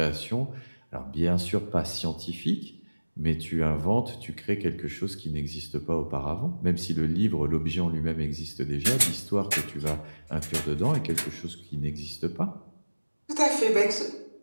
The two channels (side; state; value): both; inverted; correlation -1.00